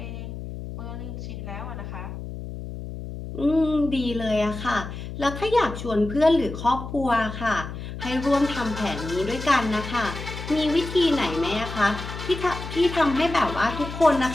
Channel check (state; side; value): noise; left; hum, 9 dB below the sound